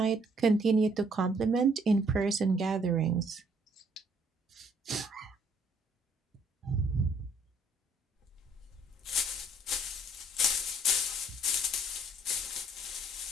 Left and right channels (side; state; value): both; normal; correlation 0.64